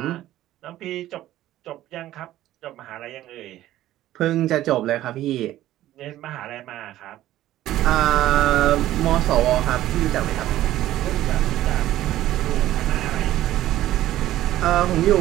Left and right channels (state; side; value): quieter; left; 14.1 dB